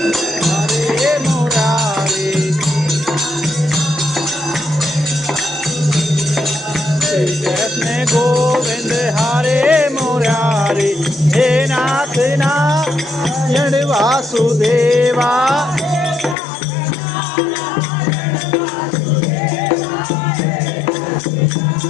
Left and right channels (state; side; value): drops out; right; at 16.4 s